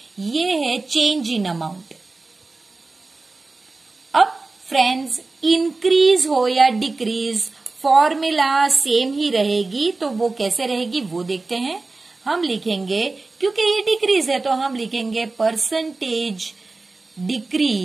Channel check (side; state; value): left; quieter; 3.6 dB